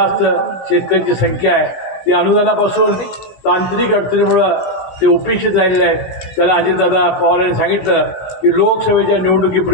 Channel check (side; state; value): right; late; 16 ms